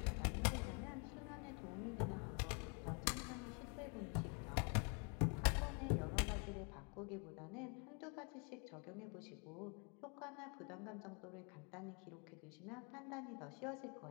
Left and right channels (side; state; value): right; quieter; 35.9 dB